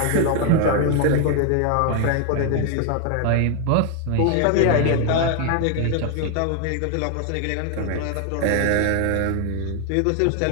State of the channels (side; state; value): both; different; correlation 0.00